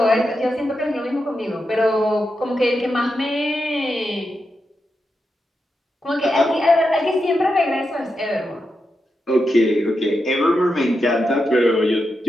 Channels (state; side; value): normal; both; correlation 0.87